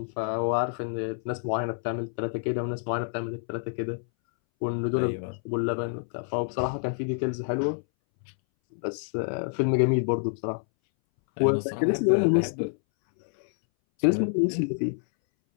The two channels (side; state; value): right; silent; 60 dB below the other